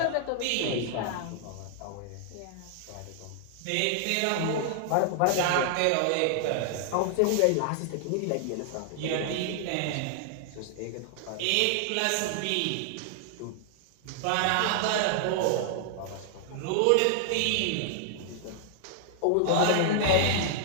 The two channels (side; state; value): both; different; correlation -0.01